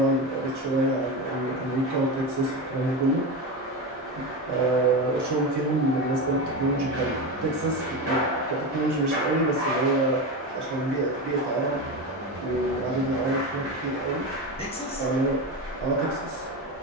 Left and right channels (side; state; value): both; normal; correlation 0.19